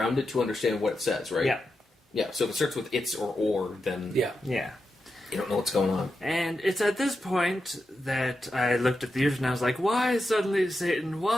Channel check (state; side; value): normal; both; correlation 0.88